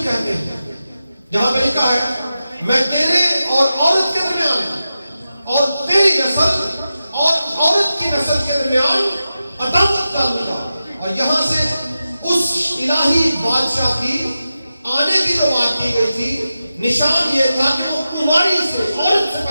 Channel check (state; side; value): inverted; both; correlation -0.92